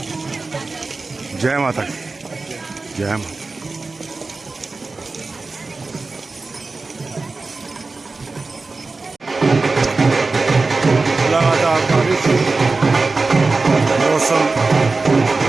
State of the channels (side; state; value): left; quieter; 3.8 dB